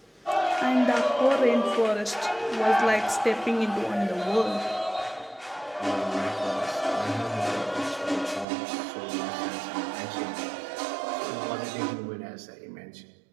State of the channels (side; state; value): left; drops out; at 8.5 s